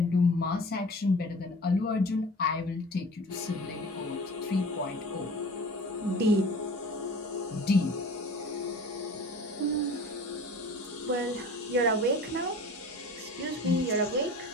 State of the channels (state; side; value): normal; both; correlation 0.41